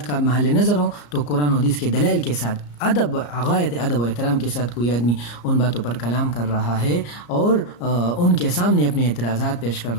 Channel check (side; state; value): right; late; 34 ms